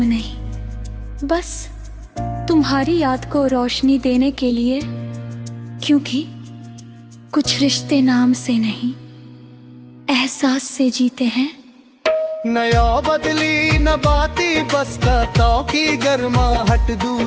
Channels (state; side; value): identical; both; correlation 1.00